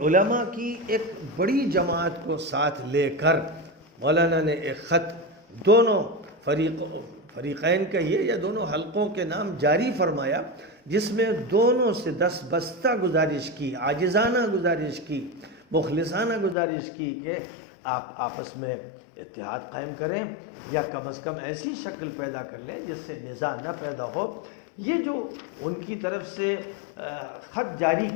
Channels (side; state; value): right; drops out; at 16.6 s